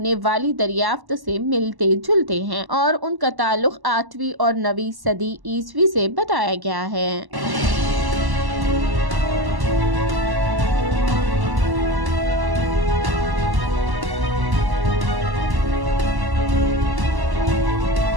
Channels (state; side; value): late; left; 1.1 ms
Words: والی دریافت سے ملتے جلتے ہیں اور ان کا تعلق 8ویں اور 9ویں صدی عیسوی سے بتایا گیا ہے۔